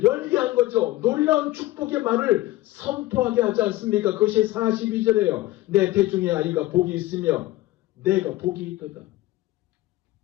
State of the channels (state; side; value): quieter; right; 17.1 dB